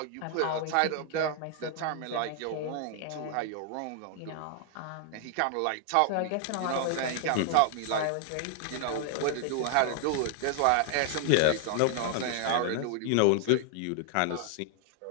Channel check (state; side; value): different; both; correlation 0.00